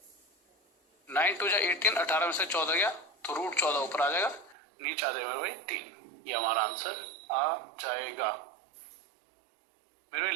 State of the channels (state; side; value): drops out; left; at 4.5 s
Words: 9 2 18, 18 में से 14 गया तो रूट 14 ऊपर आ जाएगा, नीचे आ जाएगा मेरे भाई 3। ये हमारा आंसर आ जाएगा। मेरे भाई